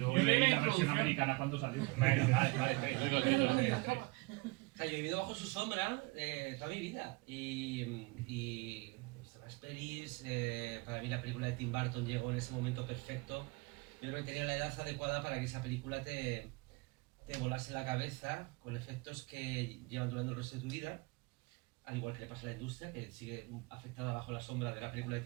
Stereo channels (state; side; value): quieter; left; 25.9 dB